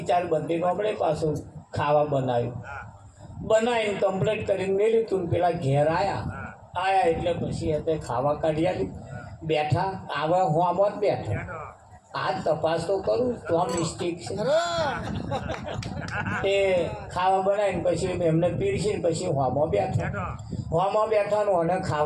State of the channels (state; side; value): identical; both; correlation 1.00